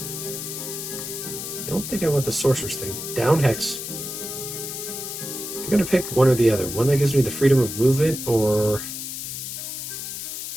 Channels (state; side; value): noise; left; hiss, 6 dB below the sound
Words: I don't think I want the sorcerer's thing. Down hex. I'm going to pick one or the other. One that gives me the freedom of movement, or